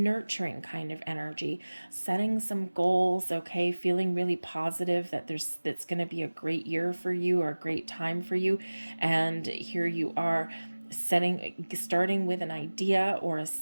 kind of energy, setting some goals, okay, feeling really positive that that's going to be a great year for you or a great time for you. And here you are starting with an idea or a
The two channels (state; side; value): inverted; both; correlation -1.00